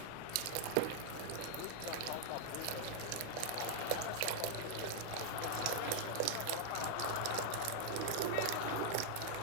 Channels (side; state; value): both; different; correlation 0.00